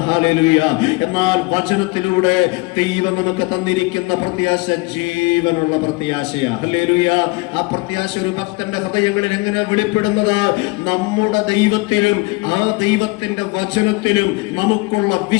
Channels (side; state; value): right; quieter; 24.6 dB